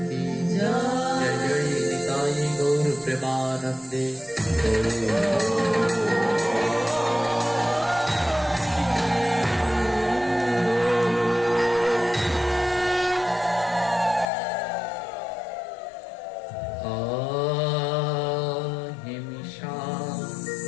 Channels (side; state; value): right; drops out; at 14.2 s